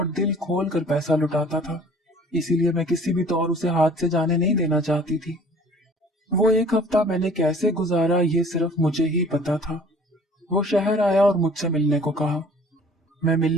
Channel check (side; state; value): both; normal; correlation 0.51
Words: दिल खोल कर पैसा लुटाता था, इसीलिए मैं किसी भी तौर उसे हाथ से जाने नहीं देना चाहती थी। वो 1 हफ्ता मैंने कैसे गुजारा ये सिर्फ मुझे ही पता था। वो शहर आया और मुझसे मिलने को कहा। मैं